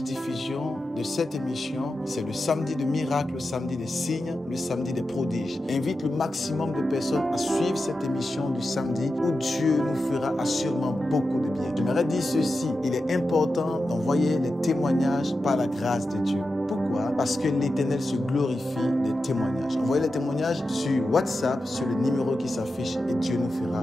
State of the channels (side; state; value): both; normal; correlation 0.91